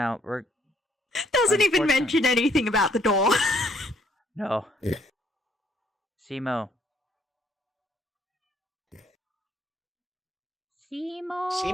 we're... Doesn't even mention anything about the door. No. Simo.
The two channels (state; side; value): normal; both; correlation 0.66